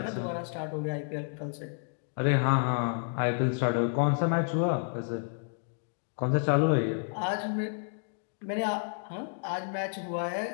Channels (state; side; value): silent; right; digital silence